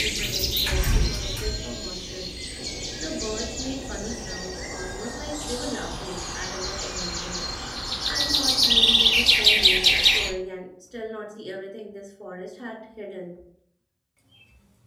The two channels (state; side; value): identical; both; correlation 1.00